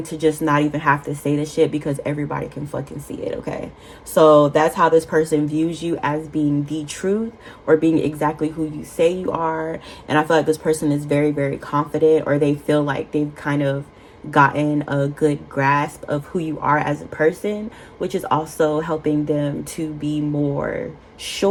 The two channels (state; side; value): identical; both; correlation 1.00